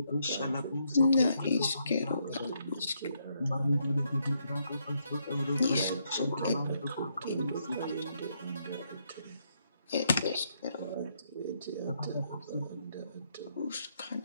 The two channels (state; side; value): inverted; both; correlation -0.76